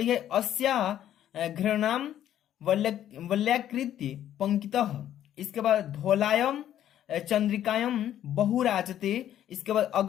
अस्या घृणाम वल्याकृत्य पंक्तितः, इसके बाद धौलायम चंद्रिकायम बहुराजते, इसके बाद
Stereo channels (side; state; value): right; quieter; 11.3 dB